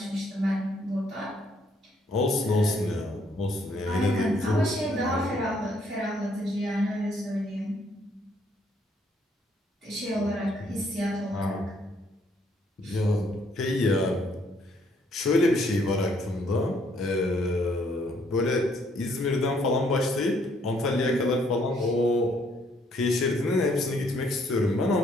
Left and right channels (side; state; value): both; normal; correlation 0.68